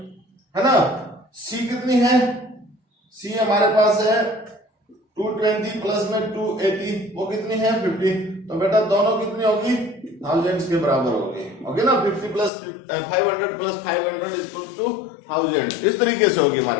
है ना। C कितनी है, C हमारे पास है 220 प्लस में 280, वो कितनी है 50। तो बेटा दोनों कितनी होगी, थाउजेंड्स के बराबर होगी, ओके ना। 50 प्लस 500 प्लस 500 इक्वल टू 1000, इस तरीके से होगी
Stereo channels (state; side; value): drops out; right; at 12.5 s